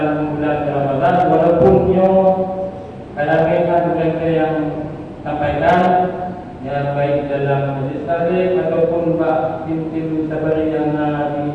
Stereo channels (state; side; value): identical; both; correlation 1.00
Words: bulan Ramadan, walaupun kadang-kadang mereka yang sampaikan yang baik dalam majlis taklim ataupun tim sabari yang